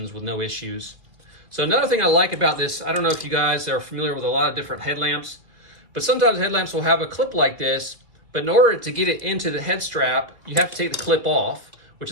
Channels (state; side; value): late; left; 2.0 ms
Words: with no issues. So another thing I like about this, I don't know if you guys are familiar with a lot of different headlamps, but sometimes headlamps will have a clip like this, but in order to get it into the head strap, you have to take the clip off, which